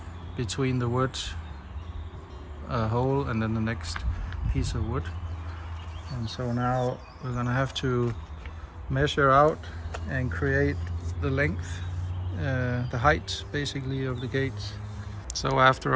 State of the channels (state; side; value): identical; both; correlation 1.00